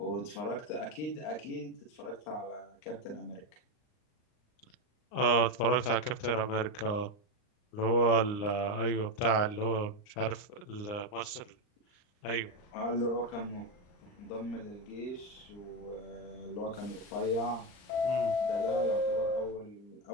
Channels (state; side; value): late; right; 39 ms